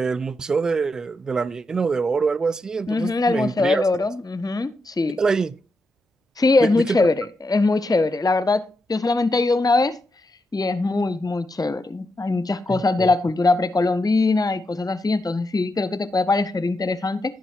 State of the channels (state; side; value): normal; both; correlation 0.84